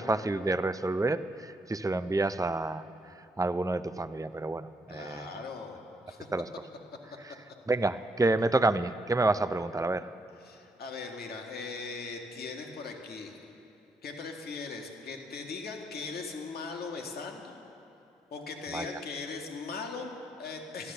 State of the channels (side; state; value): both; normal; correlation 0.75